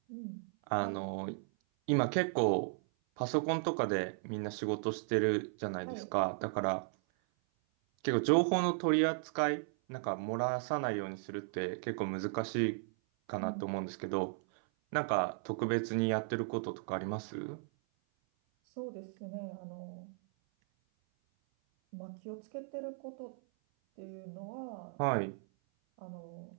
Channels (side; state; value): left; silent; 54 dB below the other